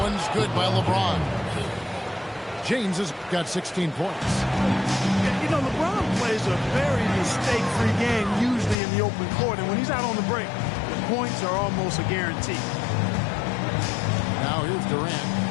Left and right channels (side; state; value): right; drops out; at 8.8 s